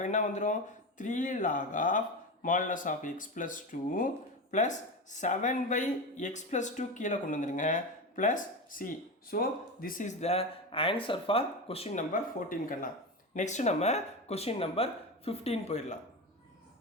என்ன வந்துடும்? 3 log of modulus of x plus 2 plus 7 by x plus 2 கீழே கொண்டு வந்துடுங்க plus c. So this is the answer for question number 14 கண்ணா. நெக்ஸ்ட் நம்ம question number 15 போயிடலாம்.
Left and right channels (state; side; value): normal; both; correlation 0.21